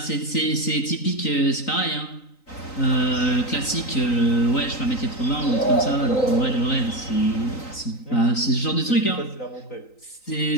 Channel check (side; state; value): right; late; 3.9 ms